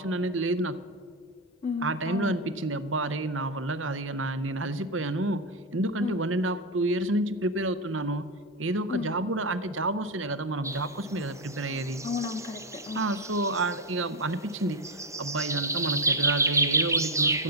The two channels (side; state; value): both; normal; correlation 0.07